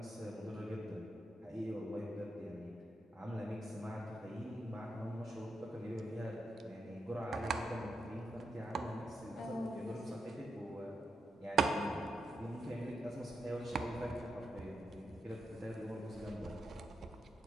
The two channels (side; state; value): both; normal; correlation 0.85